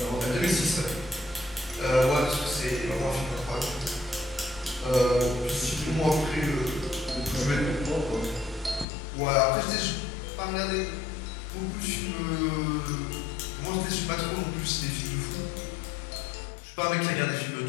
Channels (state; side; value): drops out; right; at 8.8 s